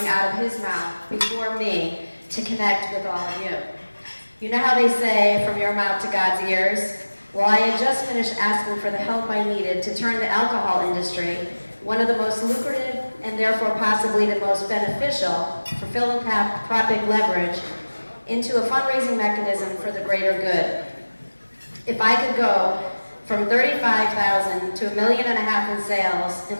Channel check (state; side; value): inverted; both; correlation -1.00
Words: out of his mouth before me to connect with all of you. You know how they say, from your mouth to God's ears? Well, I had just finished asking for the help I needed to turn the alcohol industry, one of the most lucrative and therefore possibly the most beneficial for philanthropic leverage, into a fundraising mechanism for the greater good. If I could go from $35,000 to $1.5 million in sales